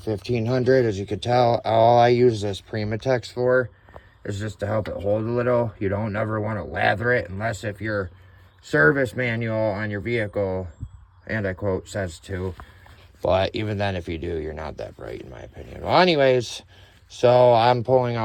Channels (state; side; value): identical; both; correlation 1.00